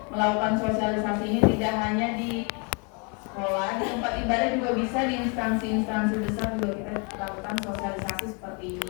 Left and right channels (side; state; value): right; quieter; 34.4 dB